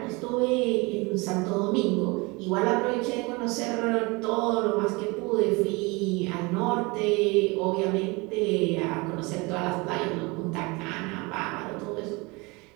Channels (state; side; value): quieter; left; 26.1 dB